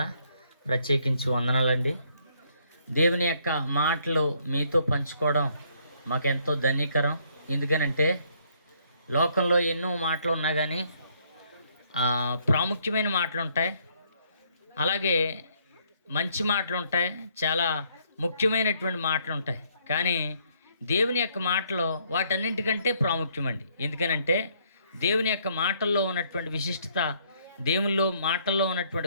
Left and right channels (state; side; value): inverted; both; correlation -0.67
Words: ప్రత్యేకించి వందనాలండి. దేవుని యొక్క మాటలు మీతో పంచుకోవడం మాకెంతో ధన్యకరం. ఎందుకనంటే లోకంలో ఎన్నో మాటలు ఉన్నా కానీ ప్రాముఖ్యమైన మాటలు ఉంటాయి, అలాగే మంచి మాటలు ఉంటాయి, చాలా ముఖ్యమైనటువంటి మాటలు ఉంటాయి. కానీ దేవుని యొక్క మాటలో వాటన్నింటికంటే ప్రాముఖ్యమండి. ఎందుకనంటే దేవుని యొక్క మాటల్లో ఉన్నటువంటి విశిష్టత, దేవునిలో మాటల్లో ఉన్నటువంటి